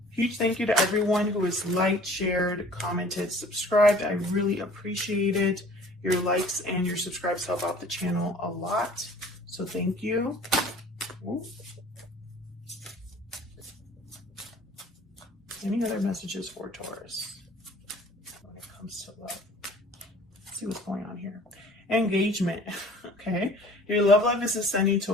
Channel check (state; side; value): normal; both; correlation 0.49